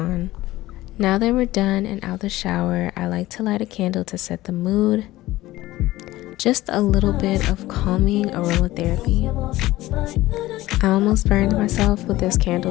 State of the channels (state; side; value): quieter; right; 17.0 dB